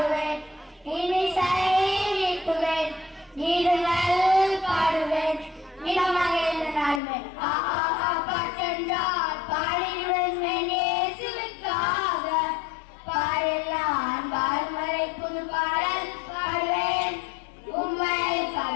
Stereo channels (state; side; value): drops out; right; at 7.0 s